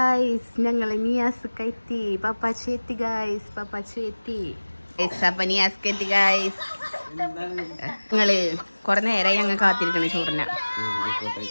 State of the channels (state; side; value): inverted; both; correlation -1.00